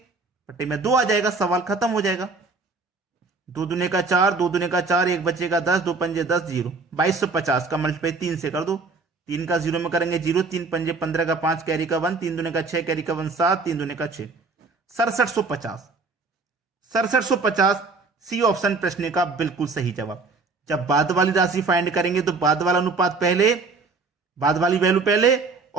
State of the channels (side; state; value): left; quieter; 4.0 dB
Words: पट्टी में 2 आ जाएगा, सवाल खत्म हो जाएगा। 2 दूने का 4, 2 दूने का 4, 1 बचेगा 10, 2 पंजे 10, 0। 2250 का मल्टीप्लाई 3 से कर दो, 3 का 0 में करेंगे 0, 3 पंजे 15 का 5 कैरी का 1, 3 दूने का 6 कैरी का 1 7, 3 दूने का 6, 6750 सी ऑप्शन प्रश्न का बिल्कुल सही जवाब। जब बाद वाली राशि फाइंड करेंगे तो बाद वाला अनुपात पहले, बाद वाली वैल्यू पहले,